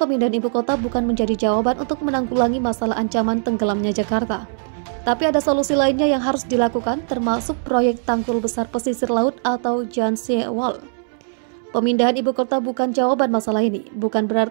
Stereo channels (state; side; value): silent; left; digital silence